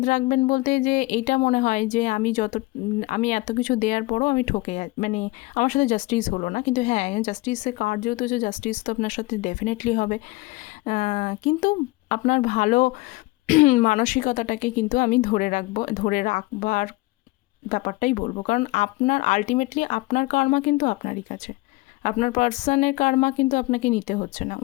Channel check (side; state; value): right; quieter; 21.8 dB